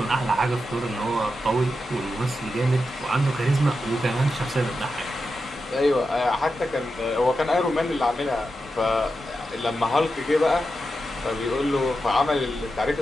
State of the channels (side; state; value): both; normal; correlation 0.89